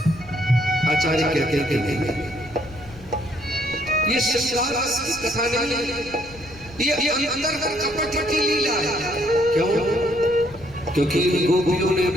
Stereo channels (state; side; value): noise; left; rumble, 20 dB below the sound